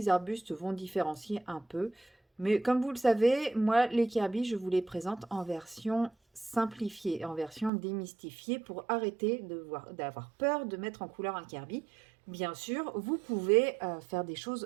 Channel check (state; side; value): drops out; left; at 7.7 s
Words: arbustes vont différencier un peu. Mais comme vous le savez, moi, les Kirby, je vous les présente en version simplifiée, en version démystifiée pour arrêter d'avoir peur de mettre en couleur un Kirby. Bien sûr, vous pouvez faire des